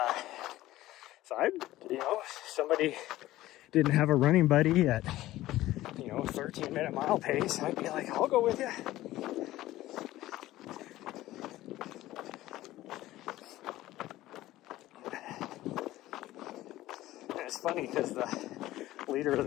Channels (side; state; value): right; quieter; 15.9 dB